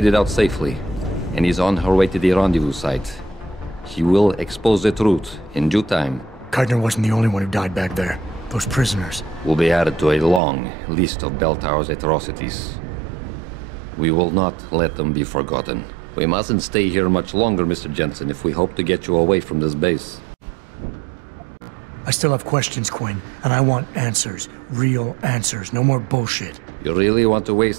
it out safely, and is on her way to the rendezvous site. She will expose the truth in due time. Keitner wasn't the only one who died back there. Those prisoners will be added to a long list of Bell Tower's atrocities. We will not let them be forgotten. We mustn't stay here much longer, Mr. Jensen, if we hope to get you away from this base. I still have questions, Quinn, and I want answers. Real answers, no more bullshit. You really want to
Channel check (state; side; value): drops out; left; at 10.4 s